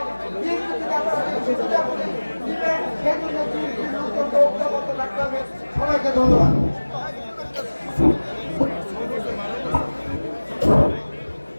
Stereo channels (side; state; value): both; inverted; correlation -1.00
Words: বিএনপি থেকে আপনারা সুবিধাগুলি দিবেন, সেই জন্য বিএনপির নতুন ঐক্যবদ্ধ রাখতে হবে। সবাইকে ধন্যবাদ।